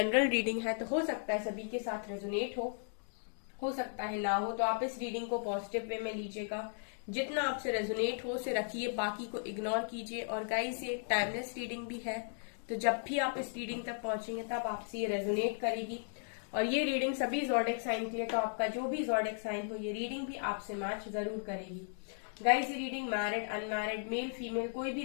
रीडिंग है तो हो सकता है सभी के साथ रेजोनेट हो सकता है ना हो, तो आप इस रीडिंग को पॉजिटिव वे में लीजिएगा। जितना आपसे रेजोनेट हो उसे रखिए, बाकी को इग्नोर कीजिए। और गाइस, ये टाइमलेस रीडिंग भी है, तो जब भी आप इस रीडिंग तक पहुंचेंगे तब आपसे ये रेजोनेट करेगी। और ये रीडिंग सभी ज़ोडिएक साइन के लिए, तो आपका जो भी ज़ोडिएक साइन हो ये रीडिंग भी आपसे मैच जरूर करेगी। गाइस, ये reading married unmarried male female कोई भी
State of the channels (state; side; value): silent; right; digital silence